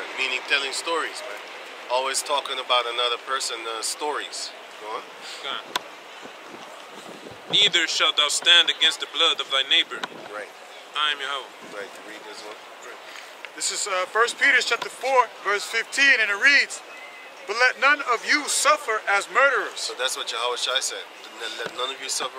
meaning telling stories, man. Always talking about another person's stories. Go on. God. Neither shalt thou stand against the blood of thy neighbor. Right. I am Yahweh. Right. Read this one. This is 1 Peter chapter 4, verse 15, and it reads, "But let none of you suffer as murderers, So that's what Yahushua said. Let none of you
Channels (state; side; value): identical; both; correlation 1.00